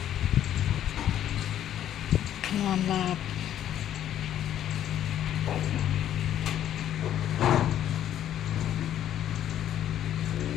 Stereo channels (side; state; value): right; quieter; 11.1 dB